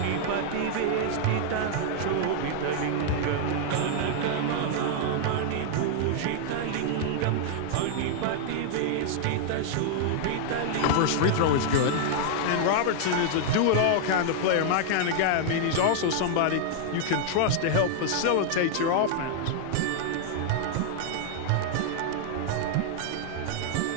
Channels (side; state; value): both; different; correlation -0.01